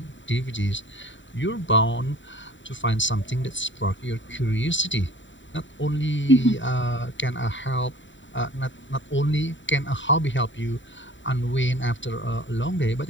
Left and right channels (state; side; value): late; right; 0.54 ms